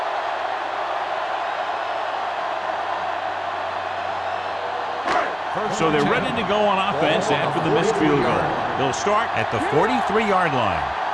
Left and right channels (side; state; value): both; identical; correlation 1.00